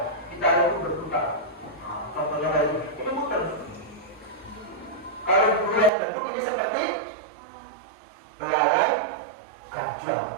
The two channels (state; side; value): drops out; left; at 5.9 s